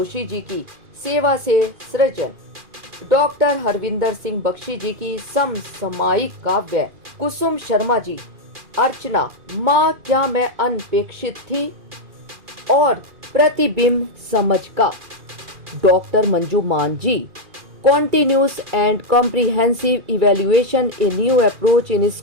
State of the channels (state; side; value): late; left; 2.4 ms